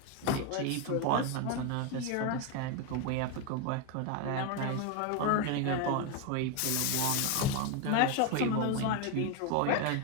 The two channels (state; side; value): different; both; correlation 0.02